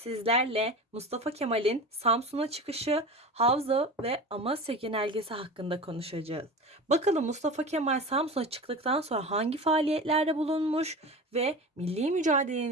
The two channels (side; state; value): both; normal; correlation 0.31